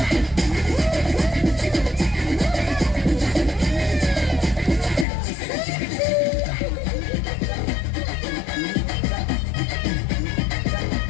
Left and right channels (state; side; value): drops out; right; at 5.1 s